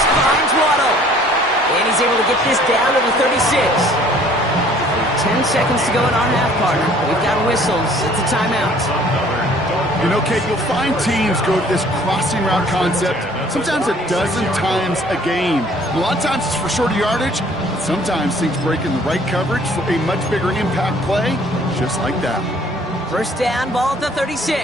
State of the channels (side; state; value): both; normal; correlation 0.56